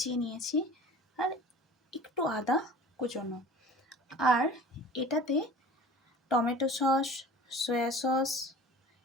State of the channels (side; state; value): both; normal; correlation 0.42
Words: নিয়েছি, আর একটু আদা কুচোনো। আর এটাতে টমেটো সস, সয়া সস,